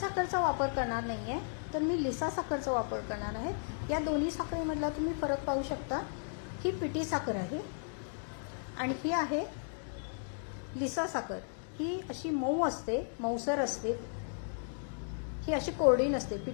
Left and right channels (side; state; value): right; silent; digital silence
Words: वापर करणार नाहीये, तर मी लिसा साखरचा वापर करणार आहे. या दोन्ही साखरेमधला तुम्ही फरक पाहू शकता. ही पिठी साखर आहे आणि ही आहे लिसा साखर. ही अशी मऊ असते, मऊसर असते, ही अशी कोरडी नसते.